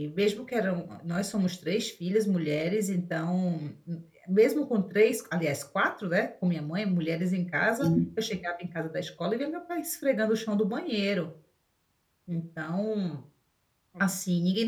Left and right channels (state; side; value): identical; both; correlation 1.00